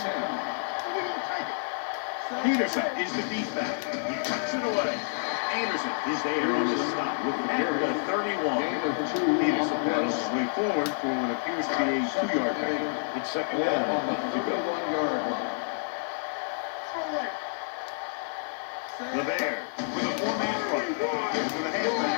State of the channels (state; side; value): silent; right; 59 dB below the other